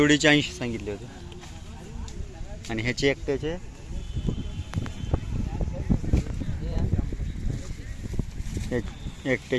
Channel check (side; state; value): both; identical; correlation 1.00